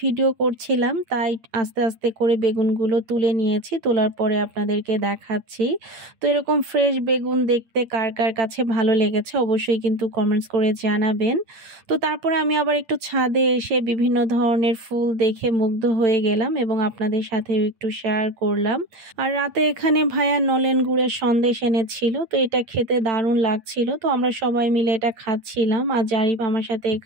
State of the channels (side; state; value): left; late; 8.9 ms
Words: ভিডিও করছিলাম, তাই আস্তে আস্তে করে বেগুনগুলো তুলে নিয়েছি, তোলার পরে আপনাদেরকে দেখাচ্ছি। তো এরকম ফ্রেশ বেগুন দেখতে কার কার কাছে ভালো লেগেছে অবশ্যই কিন্তু কমেন্টস করে জানাবেন। তো তারপরে আমি আবার একটু ছাদে এসে বিভিন্ন ধরনের ফুল দেখে মুগ্ধ হয়ে গেলাম এবং আপনাদের সাথে একটু শেয়ার করলাম। আর রাতে এখানে ভাইয়া নলেন গুড়ের সন্দেশ এনেছিল, তো এটা খেতে দারুণ লাগছিল। তো আমরা সবাই মিলে এটা খাচ্ছিলাম, আর জারিফ আমার সাথে